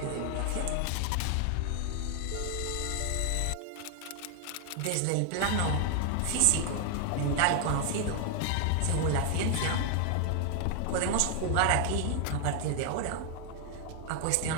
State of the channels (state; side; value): different; both; correlation 0.00